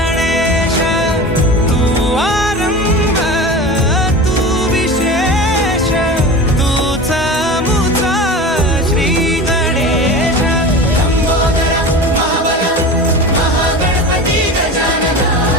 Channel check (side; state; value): both; normal; correlation 0.31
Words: तू आरंभ तू विशेष तूच मुचा श्री गणेश। लंबोदर महाबल महागणपती गजानना।